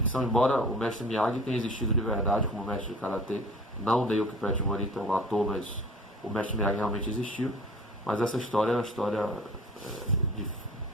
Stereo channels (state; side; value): normal; both; correlation 0.44